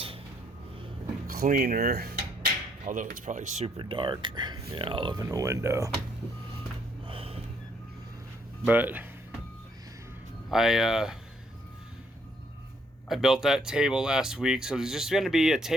cleaner, although it's probably super dark. Yeah, I'll open the window. But I built that table last week, so there's just going to be a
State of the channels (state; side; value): normal; both; correlation 0.69